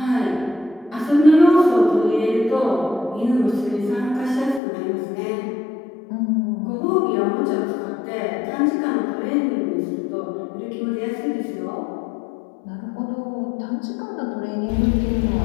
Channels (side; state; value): right; drops out; at 4.6 s